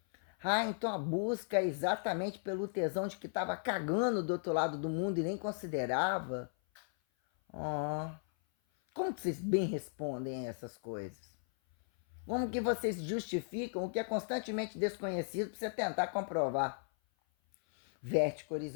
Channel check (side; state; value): right; silent; 54 dB below the other